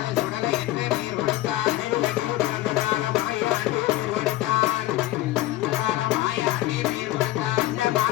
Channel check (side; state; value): right; quieter; 16.2 dB